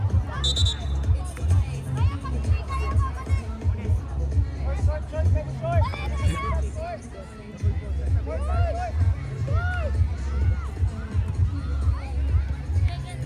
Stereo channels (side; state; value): both; identical; correlation 1.00